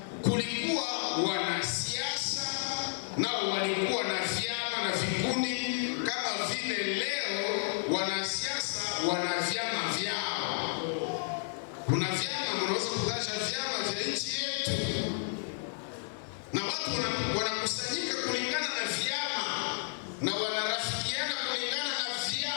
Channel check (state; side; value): silent; right; digital silence